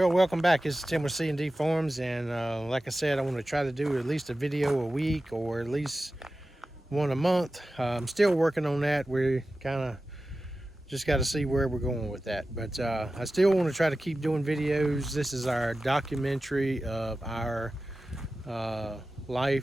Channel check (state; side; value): normal; both; correlation 0.94